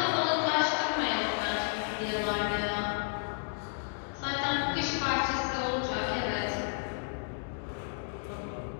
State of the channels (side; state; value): right; silent; digital silence